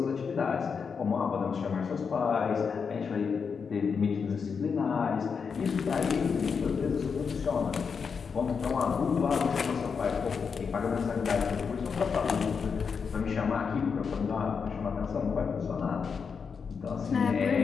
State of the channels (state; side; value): quieter; right; 5.9 dB